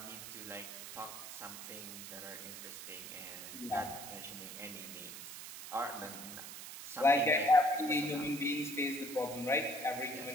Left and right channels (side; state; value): right; noise; hiss, 10 dB below the sound